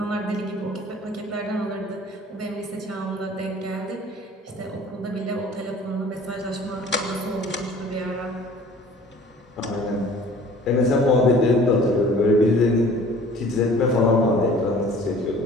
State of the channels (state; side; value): normal; both; correlation 0.49